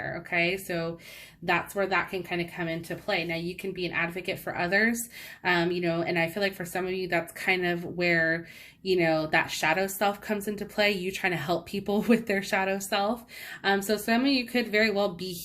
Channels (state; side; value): identical; both; correlation 1.00